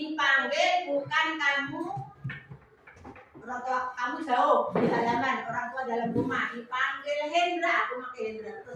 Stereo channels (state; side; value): identical; both; correlation 1.00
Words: bukan kamu, orang tua kamu jauh di halaman, orang tua dalam rumah, dipanggil Hendra, aku pakai Hendra